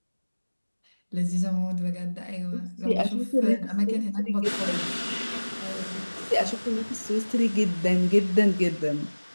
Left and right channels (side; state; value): both; inverted; correlation -1.00